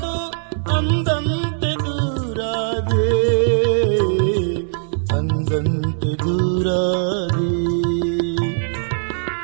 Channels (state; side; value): silent; left; 61 dB below the other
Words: ಅಂದಂತೆ ದೂರಾದೆ. ಅಂದಂತೆ ದೂರಾದೆ.